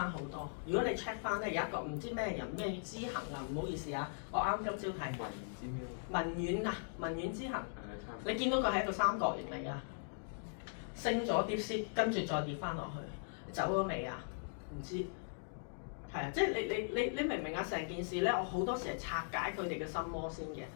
好多。如果你 check 翻咧，有一個唔知咩人咩知行啊，唔好意思啊，我啱今朝睇文遠知行，你見到佢係一個三角形嚟㗎，升咗 DeepSeek，跟住再跌翻落去，走咗未啊？唔知。係啊，即係你明唔明啊？成件事咧，我好多時係拆解佢哋嘅心魔先嘅，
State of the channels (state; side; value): silent; right; digital silence